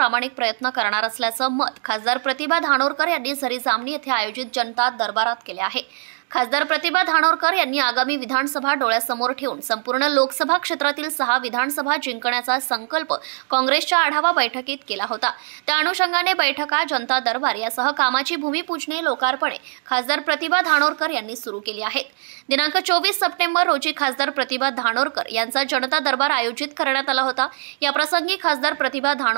प्रयत्न करणार असल्याचं मत खासदार प्रतिभा धानोरकर यांनी झरी जामणी येथे आयोजित जनता दरबारात केले आहे। खासदार प्रतिभा धानोरकर यांनी आगामी विधानसभा डोळ्यासमोर ठेवून संपूर्ण लोकसभा क्षेत्रातील 6 विधानसभा जिंकण्याचा संकल्प काँग्रेसच्या आढावा बैठकीत केला होता। त्या अनुषंगाने बैठका, जनता दरबार यासह कामाची भूमिपूजने, लोकार्पणे खासदार प्रतिभा धानोरकर यांनी सुरू केली आहेत। दिनांक 24 सप्टेंबर रोजी खासदार प्रतिभा धानोरकर यांचा जनता दरबार आयोजित करण्यात आला होता। या प्रसंगी खासदार प्रतिभा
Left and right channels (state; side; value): silent; left; 65 dB below the other